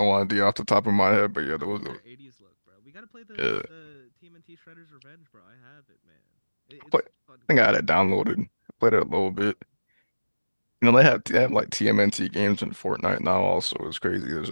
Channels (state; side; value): inverted; both; correlation -1.00